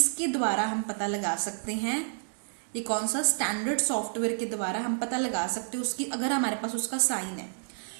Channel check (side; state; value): left; silent; digital silence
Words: द्वारा हम पता लगा सकते हैं, ये कौन सा स्टैंडर्ड सॉफ्टवेयर के द्वारा हम पता लगा सकते हैं उसकी, अगर हमारे पास उसका साइन है।